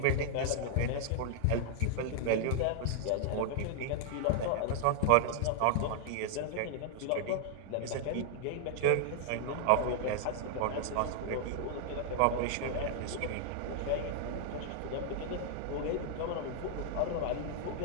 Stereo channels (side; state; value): both; different; correlation 0.00